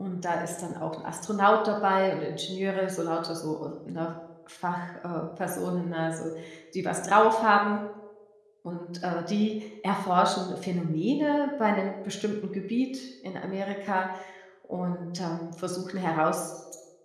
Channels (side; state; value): both; identical; correlation 1.00